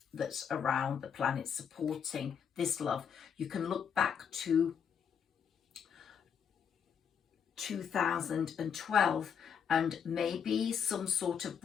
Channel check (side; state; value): right; quieter; 7.4 dB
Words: that's around the planet supporting this love. You can look back to 2012 and maybe some sort of